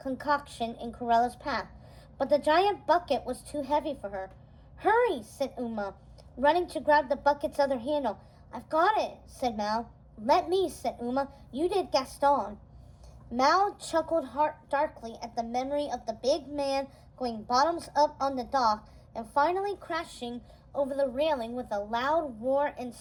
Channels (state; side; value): identical; both; correlation 1.00